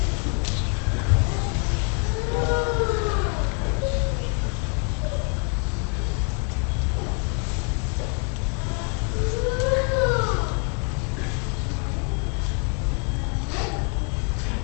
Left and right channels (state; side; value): quieter; right; 38.8 dB